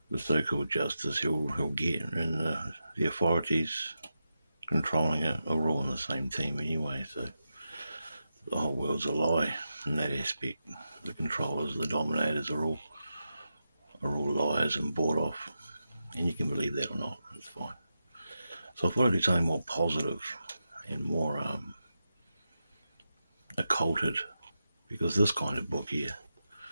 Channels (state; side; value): inverted; both; correlation -0.89